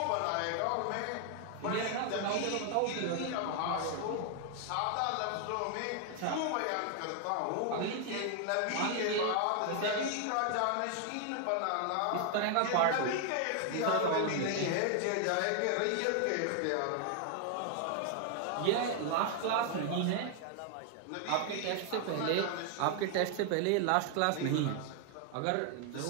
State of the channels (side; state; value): both; different; correlation 0.00